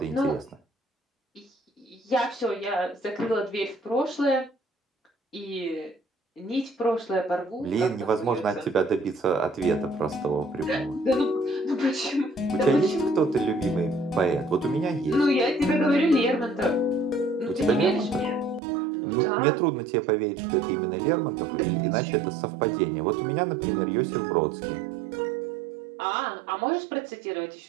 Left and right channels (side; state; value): left; drops out; at 18.6 s